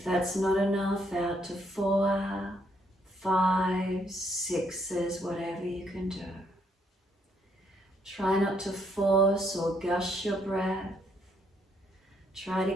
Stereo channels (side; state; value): both; normal; correlation 0.72